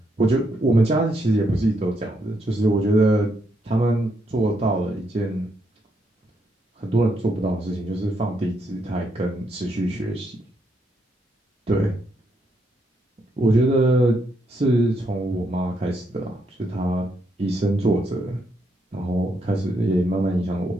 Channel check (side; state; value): both; normal; correlation 0.77